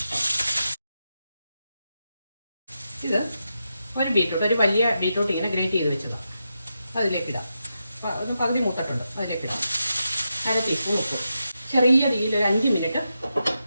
ഇത് ഒരു ബീറ്റ്റൂട്ട്, ഒരു വലിയ ബീറ്റ്റൂട്ട് ഇങ്ങനെ ഗ്രേറ്റ് ചെയ്ത് വെച്ചതാണ്. അതിലേക്കിടാം. ഒന്ന് പകുതി മൂത്തിട്ടുണ്ട്, അതിലേക്കിടാം. 1/2 ടീസ്പൂൺ ഉപ്പ്. ചെറിയ തീയിൽ ഒരു 5 മിനിറ്റ്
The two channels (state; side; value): inverted; both; correlation -0.87